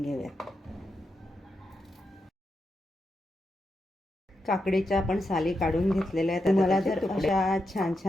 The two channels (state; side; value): normal; both; correlation 0.86